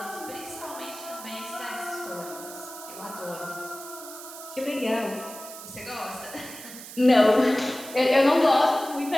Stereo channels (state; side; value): noise; right; hiss, 13 dB below the sound